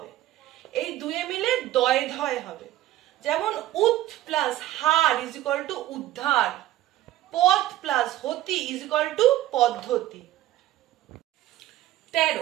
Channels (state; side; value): quieter; left; 14.4 dB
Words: এই দুয়ে মিলে দয় ধয় হবে। যেমন উৎ plus her is equal two উদ্ধার, পথ প্লাস হতি ইজ ইকুয়াল টু পদ্ধতি।